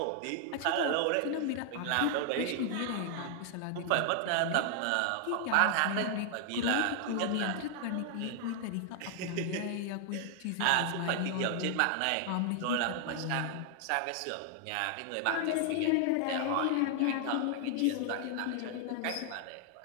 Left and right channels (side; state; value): both; different; correlation 0.00